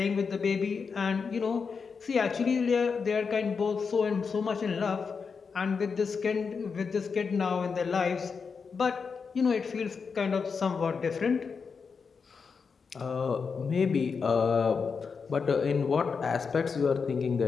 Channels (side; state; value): right; quieter; 5.5 dB